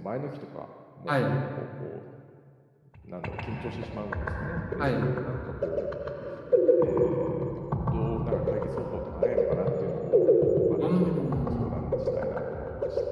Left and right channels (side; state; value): both; identical; correlation 1.00